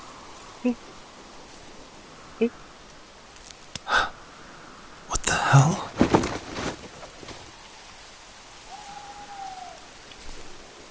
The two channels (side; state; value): both; identical; correlation 1.00